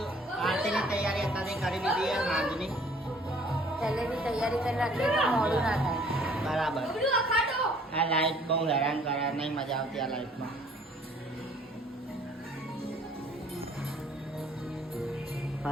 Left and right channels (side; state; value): both; normal; correlation 0.57